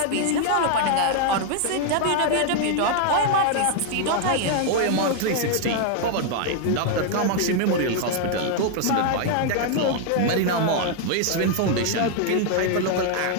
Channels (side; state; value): both; different; correlation 0.00